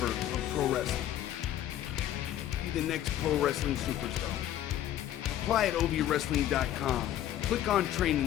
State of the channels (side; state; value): right; quieter; 12.0 dB